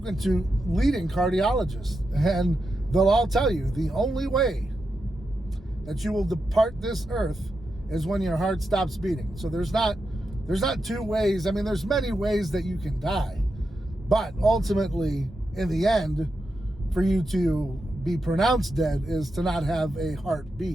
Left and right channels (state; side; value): normal; both; correlation 0.87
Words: to leading cardiologists, and they'll all tell you the only way that you will depart this earth is when your heart stops beating. So there's not two ways. I mean, there's many ways that you can die, but ultimately, in the end, for you to be pronounced dead is to not have a